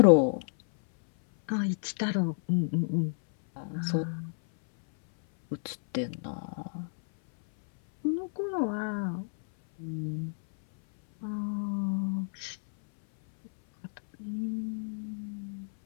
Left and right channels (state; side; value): silent; right; 58 dB below the other